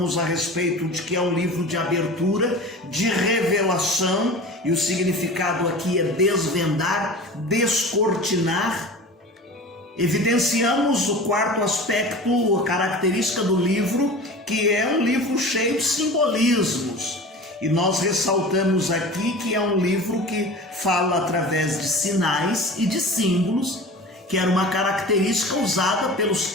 a respeito de que é um livro de abertura, de revelação, e o significado aqui é desvendar, descortinar. Evidenciamos o quarto aspecto, a característica do livro, que é um livro cheio de simbolismos. E nós ressaltamos aqui que é um livro que fala através de sinais e de símbolos, que era uma característica usada pelos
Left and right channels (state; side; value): normal; both; correlation 0.36